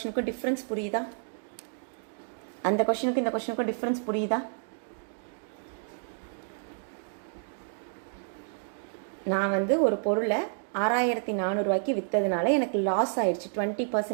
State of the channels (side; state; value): left; silent; digital silence